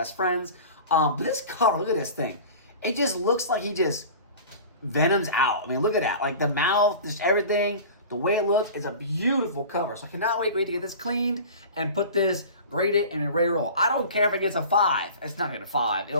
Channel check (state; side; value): inverted; both; correlation -0.38